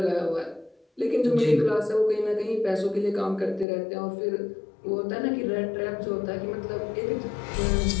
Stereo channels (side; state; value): right; drops out; at 3.7 s